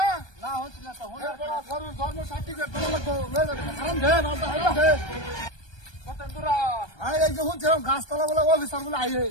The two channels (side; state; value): right; late; 1.2 ms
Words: না হচ্ছে না তো গরুর জন্ম সার্টিফিকেট বানা লাগবো লয়ে যাবি হারাম দে না হারাম দে কত দূরা আরে এই যে হুঁচছিলাম গাছতলা বলে অফিসার বলে আইয়ে